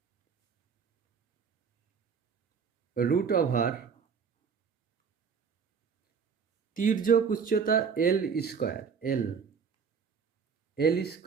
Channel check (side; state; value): left; quieter; 6.1 dB